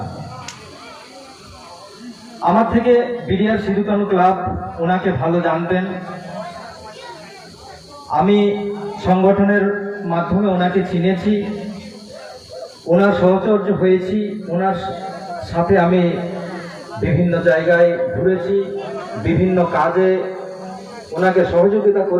আমার থেকে বিডিআর সিধুকানু ক্লাব ওনাকে ভালো জানতেন। আমি সংগঠনের মাধ্যমে ওনাকে চিনেছি, ওনার সহচর্য হয়েছি, ওনার সাথে আমি বিভিন্ন জায়গায় ঘুরেছি, বিভিন্ন কাজে ওনাকে সহযোগিতা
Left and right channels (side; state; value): both; identical; correlation 1.00